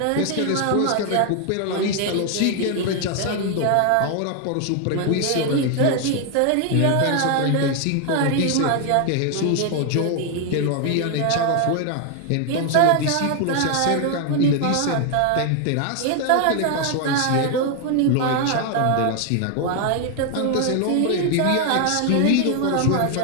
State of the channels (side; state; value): both; different; correlation 0.00